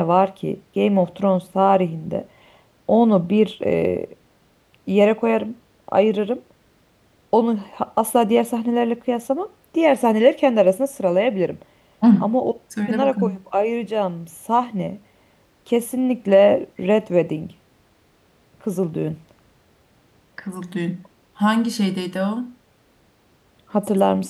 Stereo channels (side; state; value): both; identical; correlation 1.00